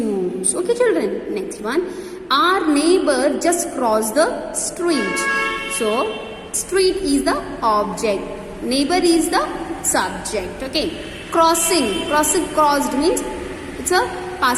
Okay children? Next one, our neighbor just crossed the street. So street is the object, neighbor is the subject. Okay. Crossing, crossed means it's a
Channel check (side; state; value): both; identical; correlation 1.00